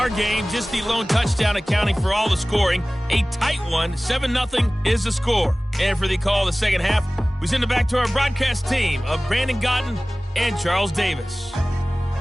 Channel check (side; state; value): both; normal; correlation 0.98